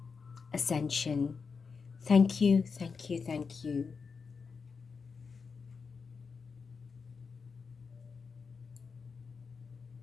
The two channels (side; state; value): right; quieter; 5.3 dB